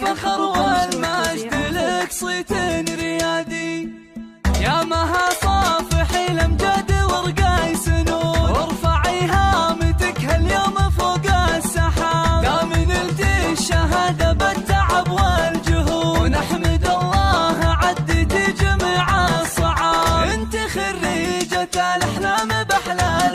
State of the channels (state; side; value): identical; both; correlation 1.00